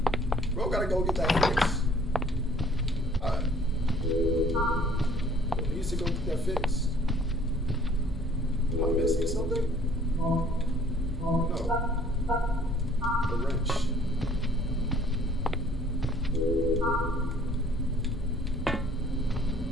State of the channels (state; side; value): normal; both; correlation 0.57